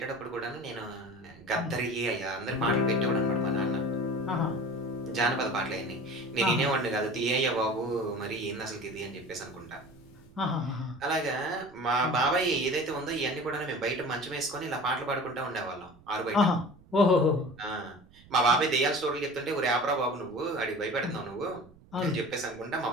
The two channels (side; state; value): right; noise; rumble, 25 dB below the sound